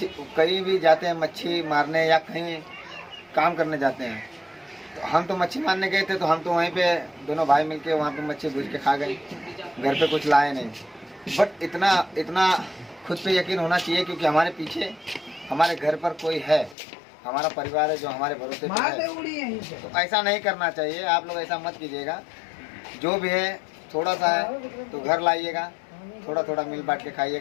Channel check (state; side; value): drops out; right; at 16.8 s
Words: कहीं भी जाते हैं मच्छी मारने या कहीं काम करने जाते हैं तो हम तो मच्छी मारने गए थे तो हम तो वहीं पे दोनों भाई मिलके वहाँ पे मच्छी भूज के खा गए, घर पे कुछ लाए नहीं। बट इतना खुद पे यकीन होना चाहिए क्योंकि हमारे पीछे हमारे घर पर कोई है, हमारा परिवार है जो हमारे भरोसे पे है। तो ऐसा नहीं करना चाहिए, आप लोग ऐसा मत कीजिएगा। जो भी है थोड़ा सा है तो घर लाइएगा, थोड़ा थोड़ा मिल बांट के